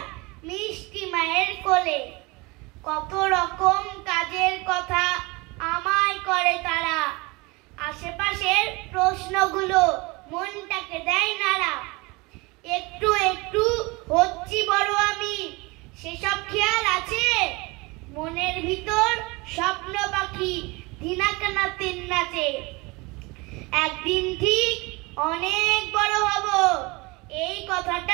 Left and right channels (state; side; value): quieter; left; 25.1 dB